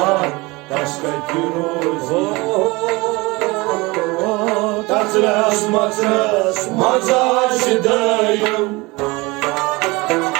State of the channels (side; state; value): left; quieter; 23.7 dB